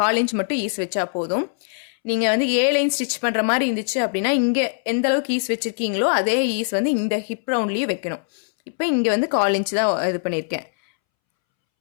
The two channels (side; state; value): right; silent; 64 dB below the other